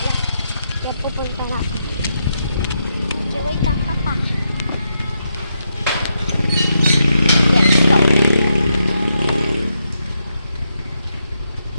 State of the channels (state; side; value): inverted; both; correlation -0.82